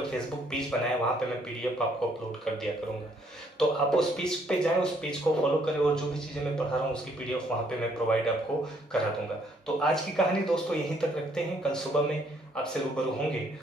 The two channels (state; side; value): normal; both; correlation 0.67